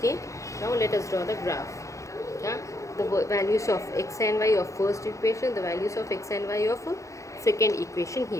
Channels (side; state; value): right; late; 0.15 ms